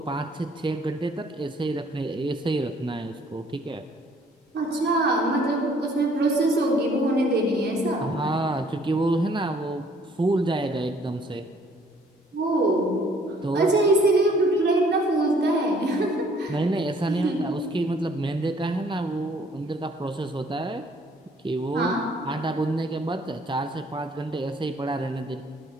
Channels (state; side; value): normal; both; correlation 0.60